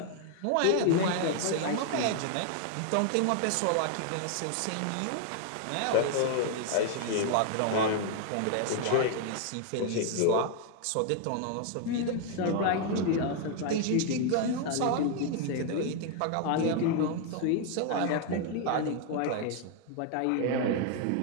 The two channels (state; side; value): different; both; correlation 0.00